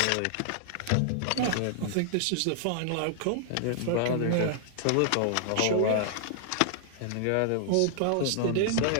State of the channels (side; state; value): both; different; correlation 0.00